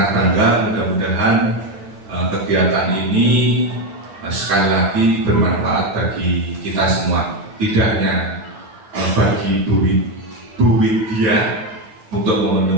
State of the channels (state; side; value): late; left; 10 ms